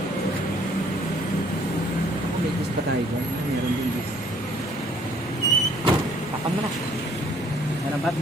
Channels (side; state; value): both; normal; correlation 0.60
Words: May gis pa tayo dyan. Meron din gis. Takan mo na. Meron pa?